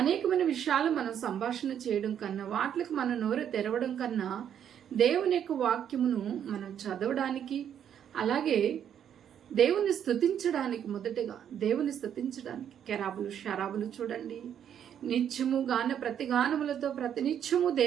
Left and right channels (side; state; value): left; quieter; 9.2 dB